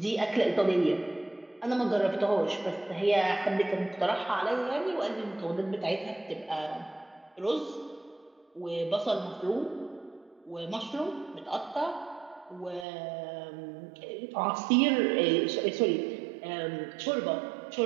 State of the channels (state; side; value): drops out; left; at 12.9 s